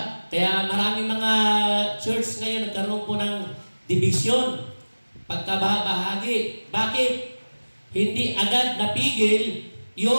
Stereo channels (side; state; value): both; inverted; correlation -1.00